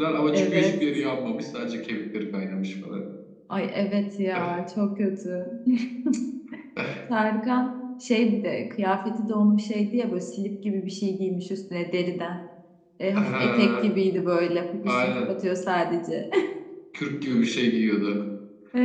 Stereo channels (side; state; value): both; identical; correlation 1.00